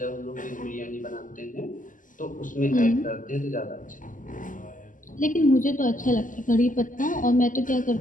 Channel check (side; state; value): right; late; 0.38 ms